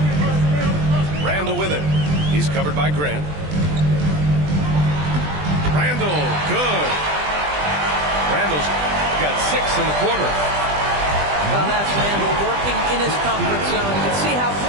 Randle with it. He's covered by Grant. Randle, good. Randle's got 6 in the quarter. Well, that's Randle working in his comfort zone. You can see how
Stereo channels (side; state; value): left; late; 20 ms